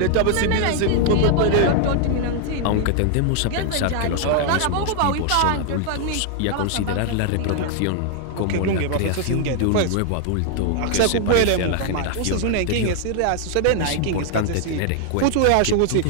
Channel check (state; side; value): different; both; correlation 0.00